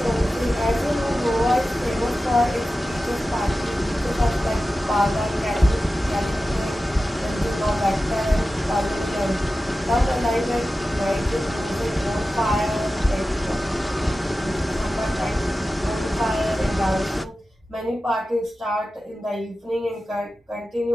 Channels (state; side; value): normal; both; correlation 0.94